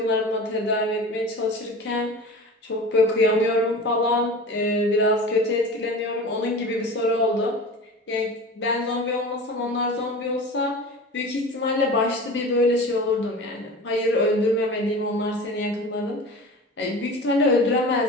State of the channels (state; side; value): normal; both; correlation 0.35